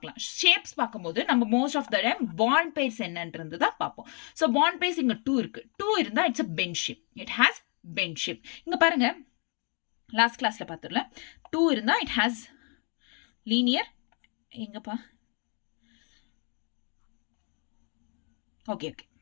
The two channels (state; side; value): quieter; right; 37.7 dB